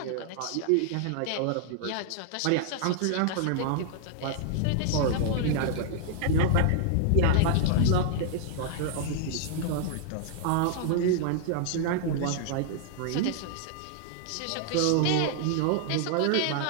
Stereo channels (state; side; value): different; both; correlation 0.00